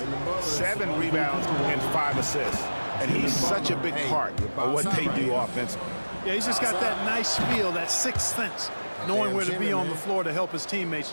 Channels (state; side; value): inverted; both; correlation -1.00